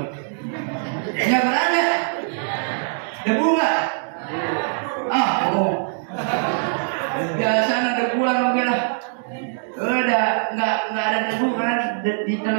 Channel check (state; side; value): silent; left; digital silence